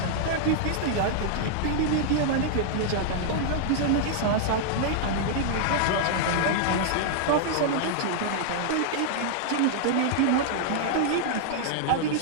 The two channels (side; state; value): both; different; correlation -0.01